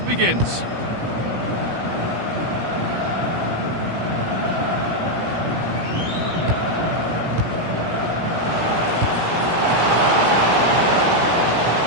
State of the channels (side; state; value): left; late; 17 ms